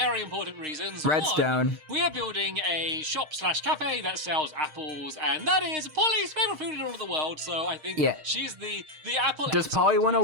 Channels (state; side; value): late; left; 6.4 ms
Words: important reasons. Redstone. One, we are building a shop/cafe that sells apples, and that is Polly's favorite food in all of the world. So I think she's the apple. Does Polly want